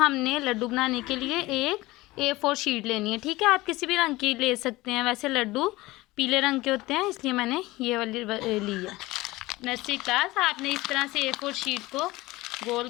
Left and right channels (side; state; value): right; quieter; 19.6 dB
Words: लड्डू बनाने के लिए एक A4 शीट लेनी है। ठीक है, आप किसी भी रंग की ले सकते हैं। वैसे लड्डू पीले रंग के होते हैं, इसलिए मैंने ये वाली ली है। नर्सरी क्लास, आपने इस तरह से A4 शीट को गोल